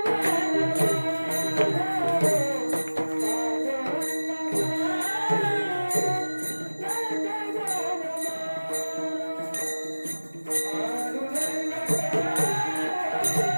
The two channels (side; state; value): both; inverted; correlation -1.00